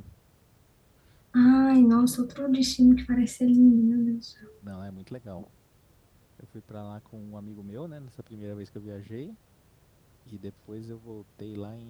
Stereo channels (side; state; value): both; identical; correlation 1.00